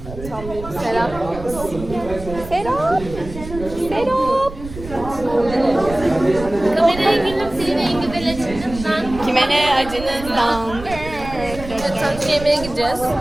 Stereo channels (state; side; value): noise; right; rumble, 12 dB below the sound